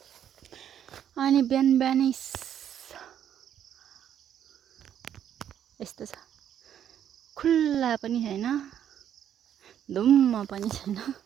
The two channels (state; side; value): quieter; left; 9.8 dB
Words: अनि बिहान बिहानै यस्तो छ, खुल्ला पनि छैन, धुम्म पनि छैन,